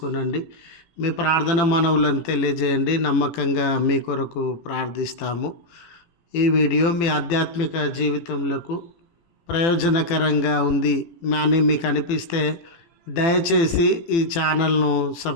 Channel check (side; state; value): right; late; 18 ms